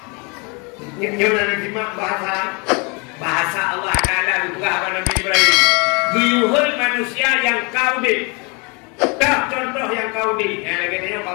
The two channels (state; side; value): quieter; right; 31.0 dB